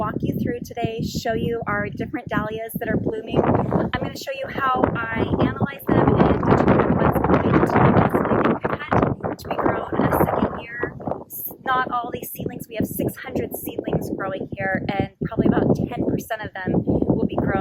you through today, show you our different dahlias that are blooming. I'm going to show you how I analyze them and determine what's going to possibly be cut to be grown a second year. Not all these seedlings, we have 600 seedlings growing here, and probably about 10% of them will be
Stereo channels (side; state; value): both; identical; correlation 1.00